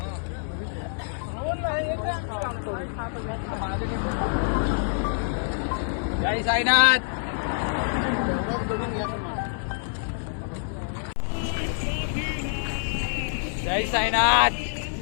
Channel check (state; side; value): silent; right; 61 dB below the other